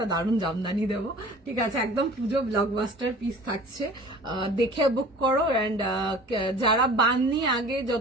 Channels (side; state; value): both; normal; correlation 0.44